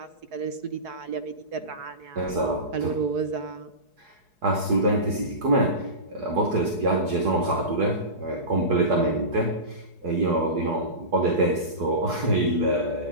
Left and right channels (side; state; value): left; late; 4.7 ms